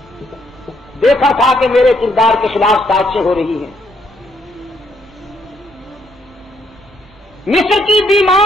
دیکھا تھا کہ میرے کردار کے خلاف سازشیں ہو رہی ہیں۔ مصر کی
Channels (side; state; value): both; normal; correlation 0.72